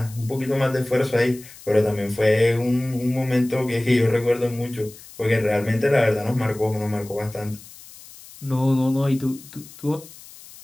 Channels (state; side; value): noise; left; hiss, 19 dB below the sound